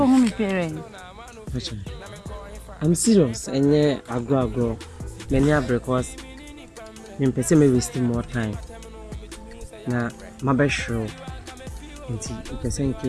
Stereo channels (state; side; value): identical; both; correlation 1.00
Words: I'm serious, and yeah, I grow. Many are because I'm wasting more time. Now, my best show. Until you can send